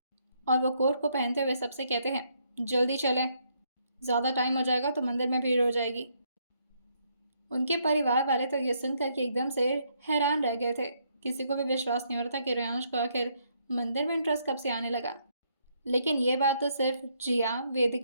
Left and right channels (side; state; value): both; inverted; correlation -0.73